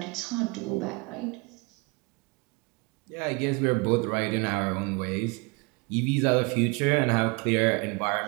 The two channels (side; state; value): left; quieter; 29.2 dB